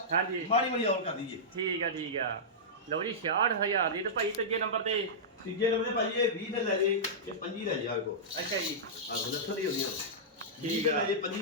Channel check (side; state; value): both; normal; correlation -0.14